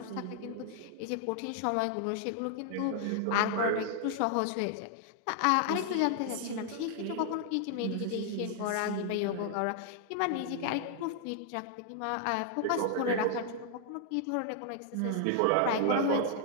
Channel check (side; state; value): both; different; correlation 0.00